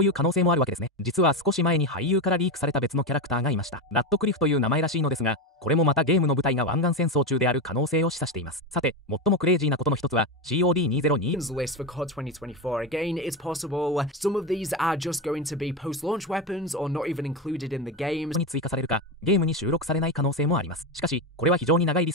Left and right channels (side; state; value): both; normal; correlation 0.15